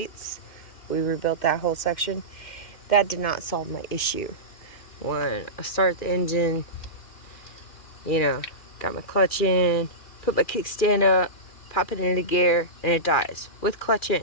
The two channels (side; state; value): right; late; 2.4 ms